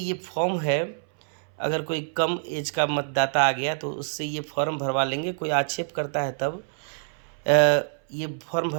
फॉर्म है। अगर कोई कम एज का मतदाता आ गया तो उससे ये फॉर्म भरवा लेंगे। कोई आक्षेप करता है तब ये फॉर्म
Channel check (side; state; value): left; silent; 61 dB below the other